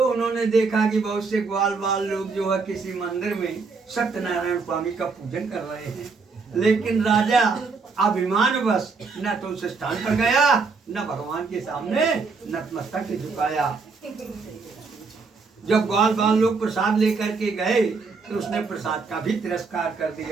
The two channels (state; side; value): quieter; left; 4.5 dB